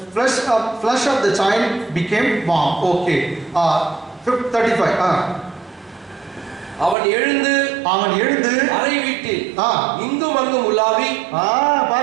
flesh of the child became warm. Okay. 35. அவன் எழுந்து அறை வீட்டில் இங்கும் அங்கும் உலாவி.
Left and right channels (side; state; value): left; drops out; at 7.0 s